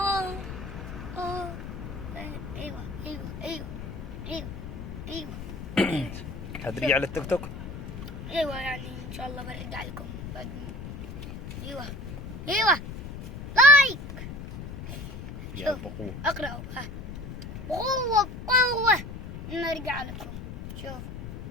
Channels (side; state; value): left; noise; rumble, 9 dB below the sound